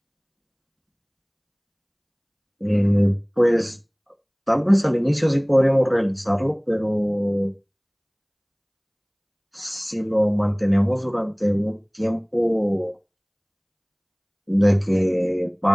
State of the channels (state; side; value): identical; both; correlation 1.00